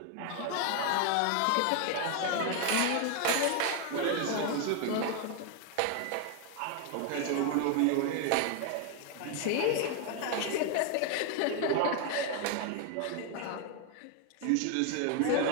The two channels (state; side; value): different; both; correlation 0.00